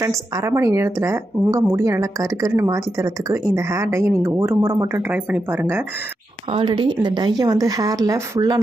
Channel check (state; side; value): normal; both; correlation 0.86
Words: அரை மணி நேரத்தில் உங்கள் முடியை நல்லா கருக்கருன்னு மாற்றி தரத்துக்கு இந்த ஹேர் டையை நீங்கள் ஒரு முறை மட்டும் ட்ரை பண்ணி பாருங்கள். ஆல்ரெடி இந்த டையை வந்து ஹேரில் ஃபுல்லாக